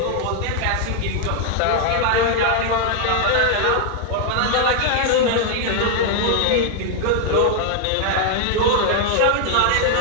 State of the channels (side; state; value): both; different; correlation 0.00